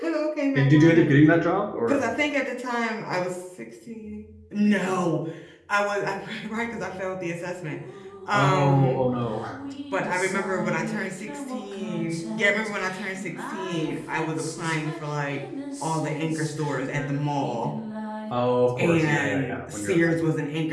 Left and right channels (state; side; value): identical; both; correlation 1.00